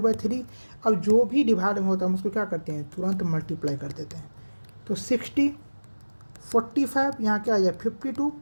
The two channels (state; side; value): inverted; both; correlation -1.00